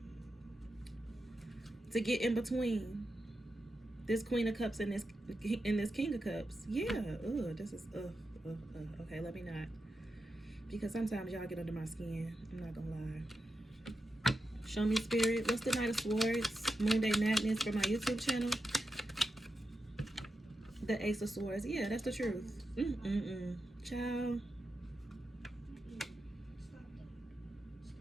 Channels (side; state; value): both; normal; correlation 0.89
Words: to get in between this Queen of Cups and this King of Cups. Yeah, this is okay, let me not, because sometimes y'all get under my skin. I'm not gonna lie. Show me, Spirit. What's the Knight of Swords? Moon Day Madness for my YouTube channel. The Ace of Swords. Yeah, that's the truth. Ciao.